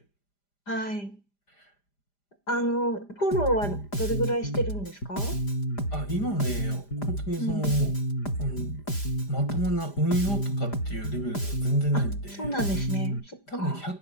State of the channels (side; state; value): right; late; 5.0 ms